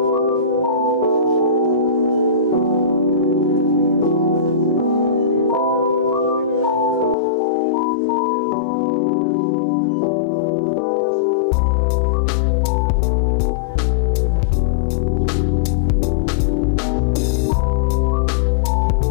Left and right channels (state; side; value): drops out; right; at 7.2 s